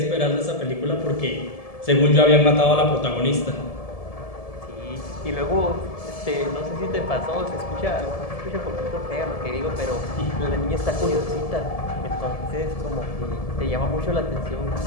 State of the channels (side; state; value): right; late; 1.7 ms